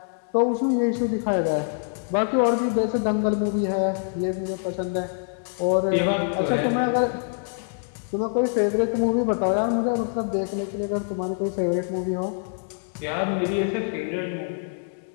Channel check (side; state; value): right; silent; 62 dB below the other